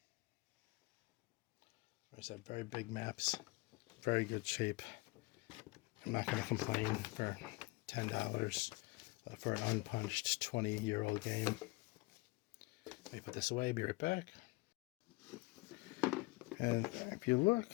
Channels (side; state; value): right; quieter; 23.6 dB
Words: There's that very big maps, very good shape. I'm not going to complain for $10 for an unpunched 20-year-old game. Let me put this away, be right back. And if you look,